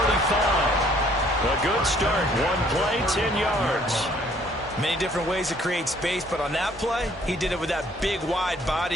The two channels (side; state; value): both; normal; correlation 0.61